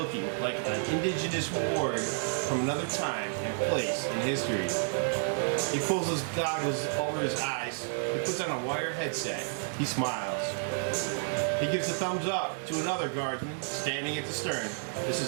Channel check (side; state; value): left; silent; digital silence